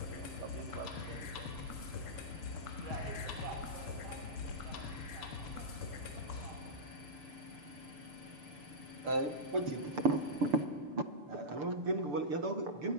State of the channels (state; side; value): late; left; 6.8 ms